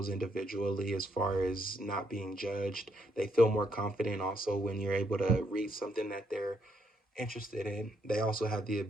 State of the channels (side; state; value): both; normal; correlation 0.75